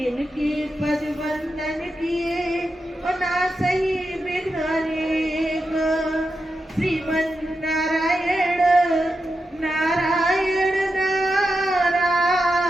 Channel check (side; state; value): both; normal; correlation 0.88